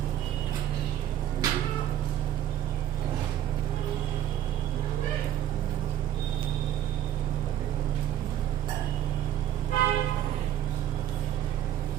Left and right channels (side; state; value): left; quieter; 11.5 dB